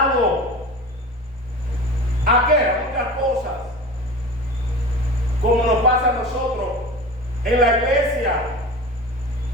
¿A qué? A muchas cosas. Como nos pasa a nosotros, en la iglesia.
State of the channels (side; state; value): both; normal; correlation 0.34